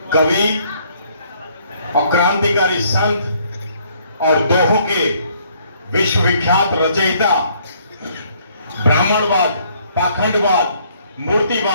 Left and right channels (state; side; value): inverted; both; correlation -0.65